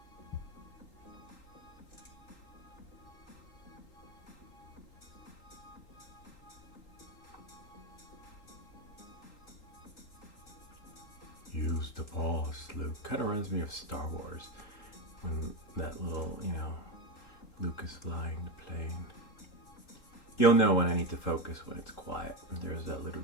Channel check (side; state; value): right; late; 3.8 ms